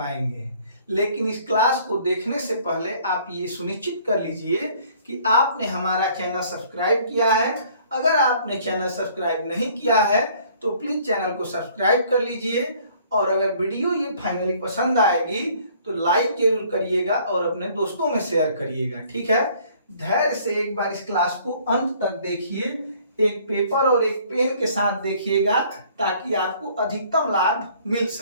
लेकिन इस क्लास को देखने से पहले आप ये सुनिश्चित कर लीजिए कि आपने हमारा चैनल सब्सक्राइब किया है। अगर आपने चैनल सब्सक्राइब नहीं किया है तो प्लीज चैनल को सब्सक्राइब कर लीजिए, और अगर वीडियो ये फाइनली पसंद आएगी तो लाइक जरूर करिएगा और अपने दोस्तों में शेयर करिएगा। ठीक है, धैर्य से एक बार इस क्लास को अंत तक देखिए, एक पेपर और एक पेन के साथ देखिएगा ताकि आपको अधिकतम लाभ मिल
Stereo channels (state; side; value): inverted; both; correlation -0.57